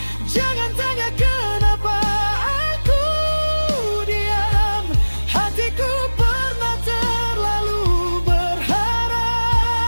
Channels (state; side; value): inverted; both; correlation -1.00